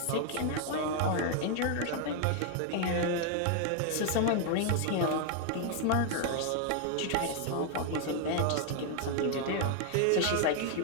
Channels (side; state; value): both; different; correlation 0.00